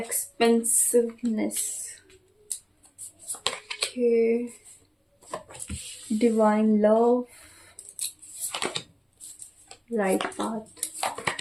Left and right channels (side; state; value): both; identical; correlation 1.00